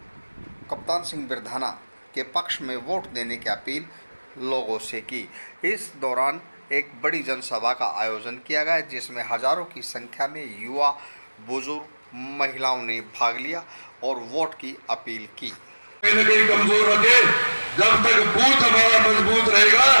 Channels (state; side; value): inverted; both; correlation -1.00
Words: कप्तान सिंह बिरधाना के पक्ष में वोट देने की अपील लोगों से की। इस दौरान एक बड़ी जनसभा का आयोजन किया गया जिसमें हजारों की संख्या में युवा, बुजुर्ग, महिलाओं ने भाग लिया और वोट की अपील की। कहीं कमजोर रखे, जब तक बूथ हमारा मजबूत रहेगा